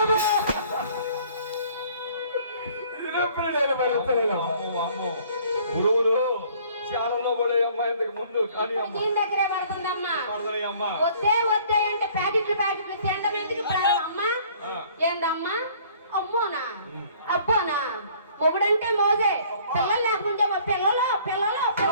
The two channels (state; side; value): inverted; both; correlation -0.56